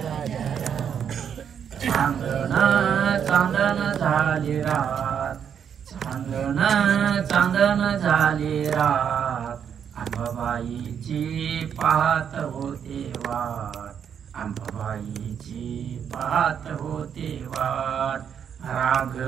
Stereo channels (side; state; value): left; quieter; 8.0 dB